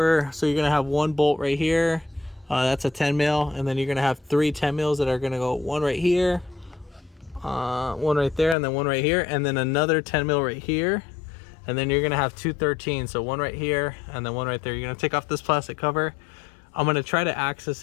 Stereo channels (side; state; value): right; drops out; at 8.6 s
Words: So you're gonna have one bolt right here, that's a 10 mil, and then you're gonna have 3 10 mils that are gonna go one right here, one right there, and then one right here, and then another 10 mil right here. And then you're gonna have 2 13s, so one right here and then one right there. You're gonna take off this plastic cover. I'm gonna try to access